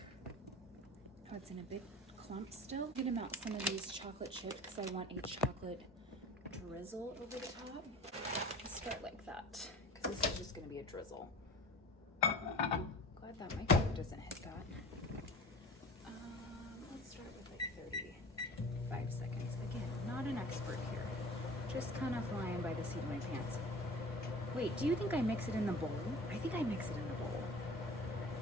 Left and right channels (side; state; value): both; normal; correlation 0.39